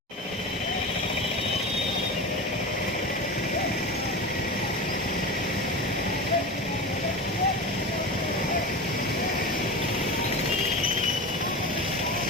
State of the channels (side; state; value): both; normal; correlation 0.26